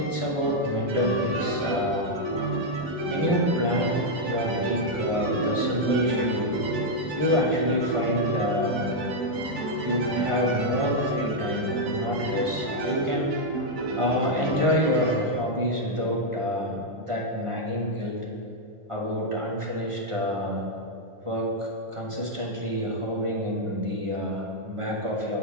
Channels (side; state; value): left; late; 1.5 ms